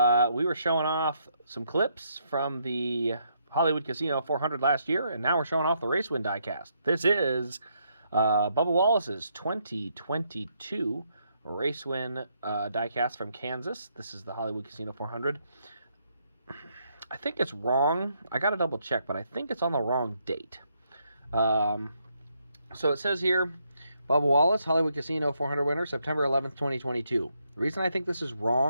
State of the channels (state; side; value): inverted; both; correlation -0.76